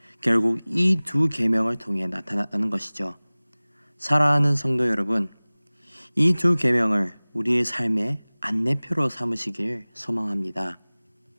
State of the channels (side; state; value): both; inverted; correlation -1.00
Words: 결국 이 두 계명을 통해 나타났다는 것이죠. 사랑하는 성도 여러분, 이 두 계명을 우리의 삶의 안내표로 삼으시길 소망합니다.